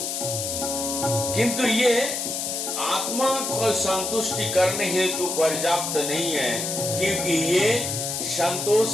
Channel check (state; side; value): noise; left; hiss, 3 dB below the sound